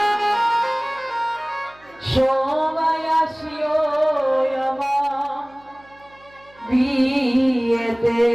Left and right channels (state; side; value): noise; right; hum, 28 dB below the sound